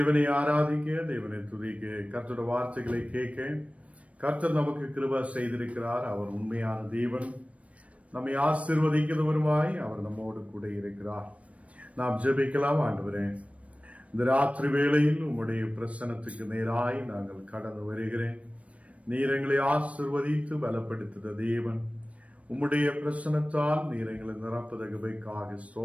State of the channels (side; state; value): left; late; 0.064 ms